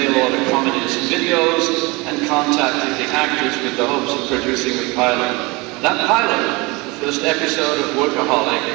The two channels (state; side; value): quieter; left; 25.2 dB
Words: Order Comedy's videos and contacted the actors with the hopes of producing a pilot. That pilot, the first episode of Workaholic,